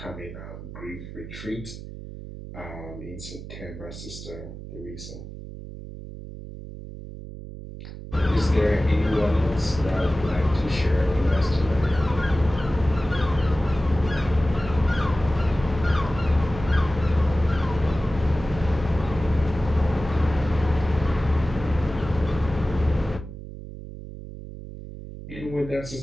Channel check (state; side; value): noise; right; hum, 12 dB below the sound